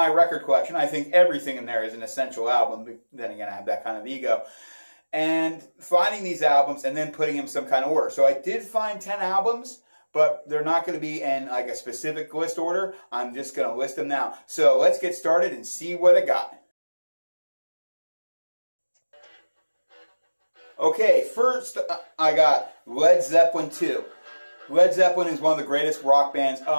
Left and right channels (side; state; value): both; inverted; correlation -1.00